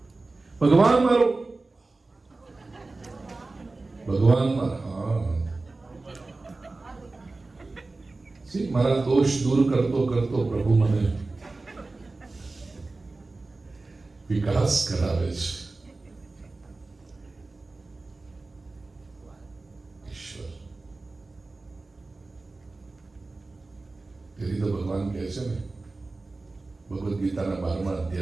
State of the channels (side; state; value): left; quieter; 3.4 dB